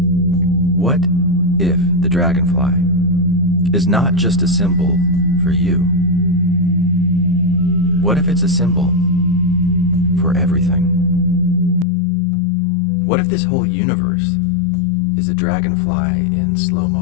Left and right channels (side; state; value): right; drops out; at 11.9 s